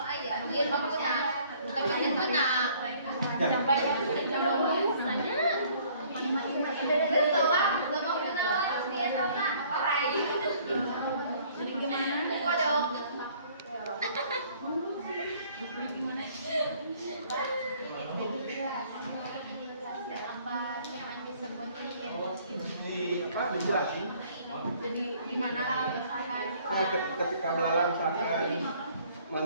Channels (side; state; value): both; inverted; correlation -0.58